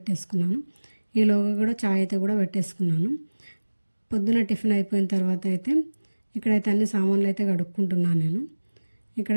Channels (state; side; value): inverted; both; correlation -1.00